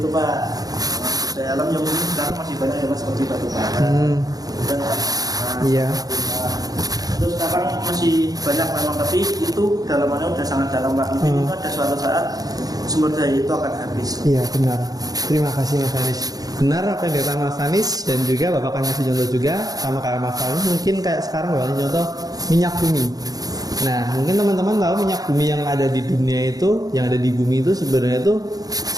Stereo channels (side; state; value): left; late; 0.18 ms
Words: Pak. Sumber daya alam yang mungkin sekarang masih banyak ya Mas, seperti batu bara. Iya. Terus sekarang masih banyak memang, tapi itu dalamannya udah sangat dalam Pak. Mungkin itu ada suatu saat sumber daya itu akan habis. Iya benar. Terima kasih Mas Anis. Benar apa yang dikatakan Mas Anis, dan juga Bapak akan ngasih contoh juga sama kayak Mas Anis. Mungkin kayak sekarang Bapak contoh minyak bumi. Nah, mungkin teman-teman tahu minyak bumi yang ada di dunia itu, yang ada di bumi itu sebenarnya itu